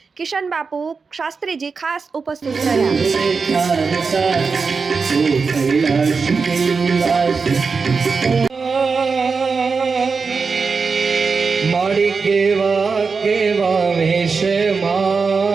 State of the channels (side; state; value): left; quieter; 4.9 dB